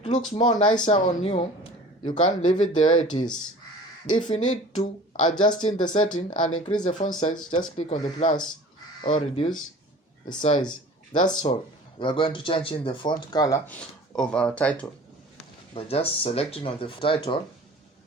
looks more nicer on you, you can leave it the way it is. If you need to adjust in the setting and increase the font size, just click on the plus or reduce the size. That's all. We are going to change in the font color of our title by just selecting on the title,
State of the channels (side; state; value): both; normal; correlation 0.43